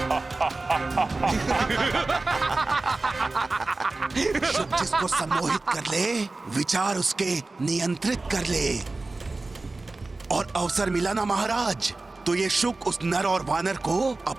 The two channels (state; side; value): quieter; left; 3.3 dB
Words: शुक जिसको सम्मोहित कर ले, विचार उसके नियंत्रित कर ले, और अवसर मिला ना महाराज, तो ये शुक उस नर और वानर को